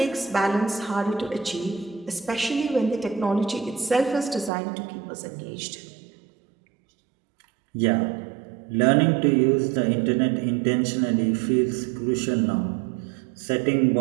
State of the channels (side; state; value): left; drops out; at 4.5 s